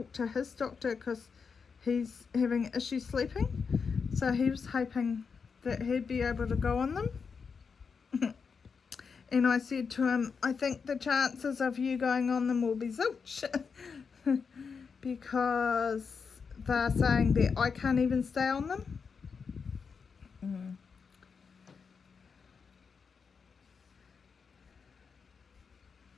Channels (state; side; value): quieter; right; 5.6 dB